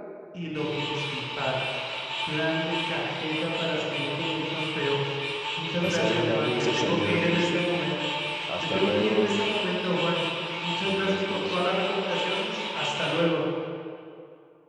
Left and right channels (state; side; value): identical; both; correlation 1.00